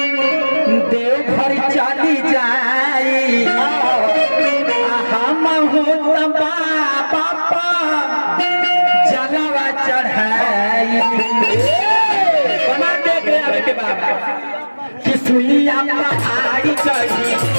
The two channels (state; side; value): inverted; both; correlation -1.00